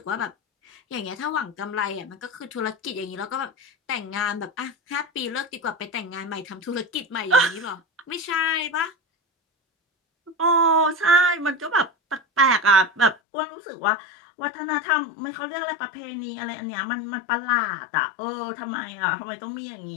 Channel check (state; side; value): drops out; right; at 13.2 s